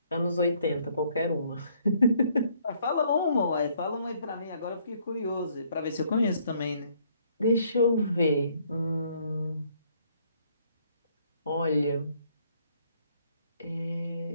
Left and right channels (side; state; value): both; inverted; correlation -0.66